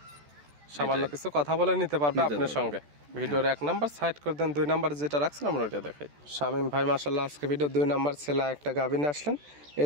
সামান্য কিছু কথা বলে নিতে পারবে আপনার সঙ্গে। ভিডিওর 1 নাম্বার সাইড করে দেন, 2 নাম্বার যেটা রাখছেন আমরা ওটা দেখাই। শামীম ভাই মাশাআল্লাহ আজকে ভিডিও 2 নাম্বার ছেলে একটা গাভী নিয়ে আসলেন।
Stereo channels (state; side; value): late; left; 14 ms